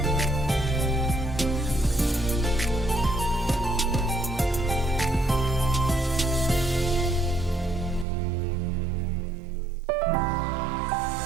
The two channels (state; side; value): drops out; left; at 8.1 s